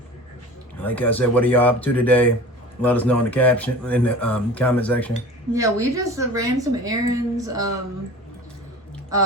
Like I said, what are y'all up to today? Let us know in the comment section. Yeah, we just ran some errands. You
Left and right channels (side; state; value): both; normal; correlation 0.39